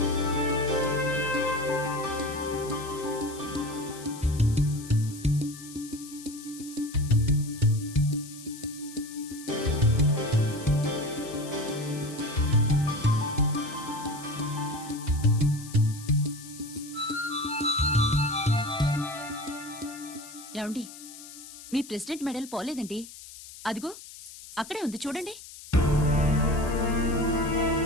ఏమండి, మీ ప్రెసిడెంట్ మెడల్ పోలేదండి. అదిగో అక్కడే ఉంది, చూడండి.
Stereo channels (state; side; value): noise; left; hiss, 16 dB below the sound